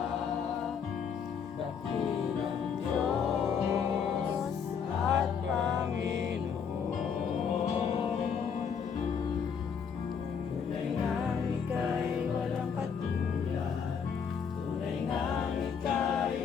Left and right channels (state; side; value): quieter; right; 6.8 dB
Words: dakilang Diyos at Panginoon. Tunay ngang ika'y walang katulad. Tunay ngang